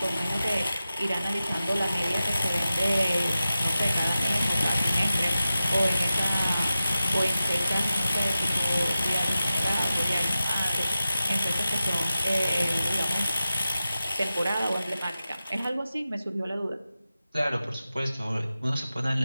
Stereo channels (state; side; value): inverted; both; correlation -0.94